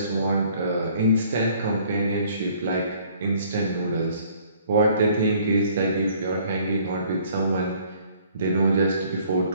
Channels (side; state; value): both; inverted; correlation -0.59